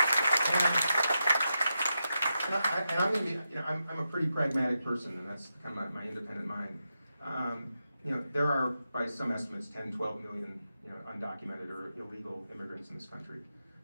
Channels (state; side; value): inverted; both; correlation -0.88